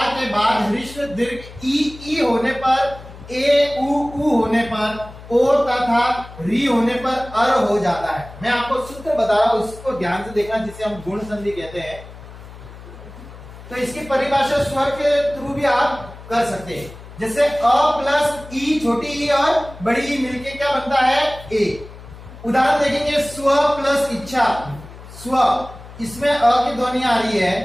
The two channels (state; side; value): noise; left; hum, 17 dB below the sound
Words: के बाद ह्रस्व दीर्घ ई होने पर, ए उ होने पर, ओ तथा री होने पर अर हो जाता है। मैं आपको सूत्र बता रहा हूं, उसको ध्यान से देखना, जिसे हम गुण संधि कहते हैं। तो इसकी परिभाषा स्वर के थ्रू भी आप कर सकते हैं। जैसे अ प्लस ई, छोटी ई और बड़ी ई मिलके क्या बनता है, ए। उदाहरण देखेंगे, स्व प्लस इच्छा, स्व, इसमें अ की ध्वनि आ रही